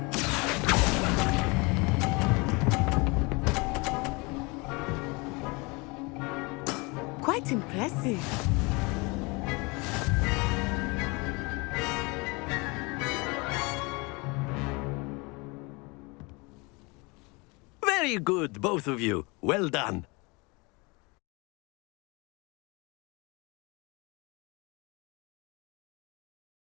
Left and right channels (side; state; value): right; quieter; 27.4 dB